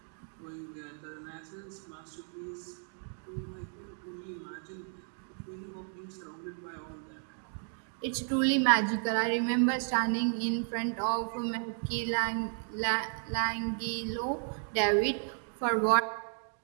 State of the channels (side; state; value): left; silent; 55 dB below the other